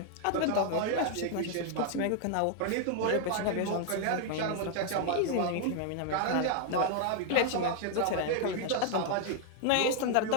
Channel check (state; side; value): different; both; correlation 0.00